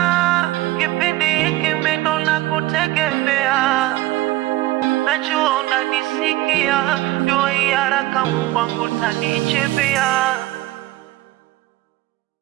kipindi hiki mindo na kutegemea. Najua unanisikia, dua hii haraka Mungu wangu tanichipia.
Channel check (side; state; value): left; quieter; 17.3 dB